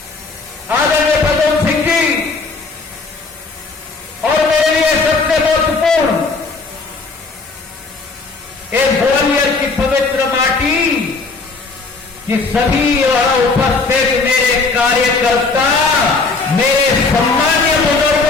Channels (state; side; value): quieter; right; 4.0 dB